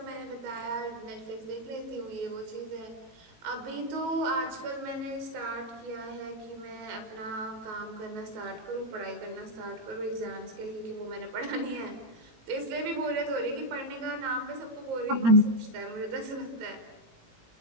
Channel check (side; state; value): left; late; 18 ms